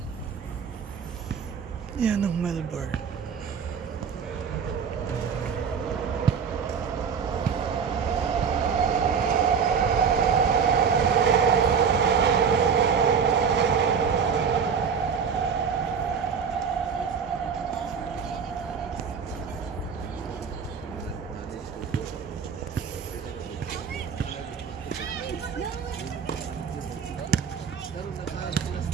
Yan ang Melbourne.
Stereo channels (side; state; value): left; quieter; 6.5 dB